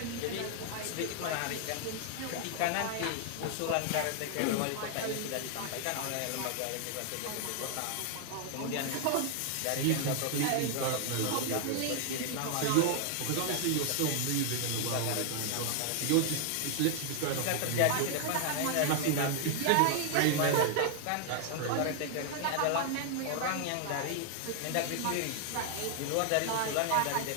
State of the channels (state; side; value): different; both; correlation 0.00